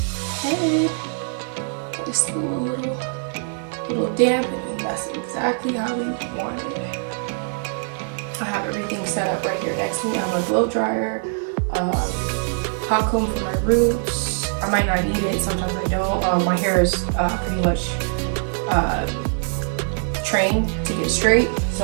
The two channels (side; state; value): left; silent; 64 dB below the other